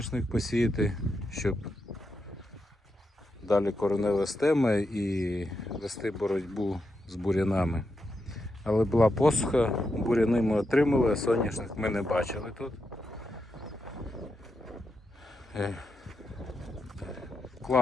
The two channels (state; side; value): normal; both; correlation 0.85